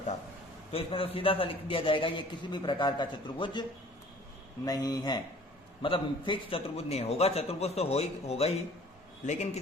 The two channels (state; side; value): normal; both; correlation 0.51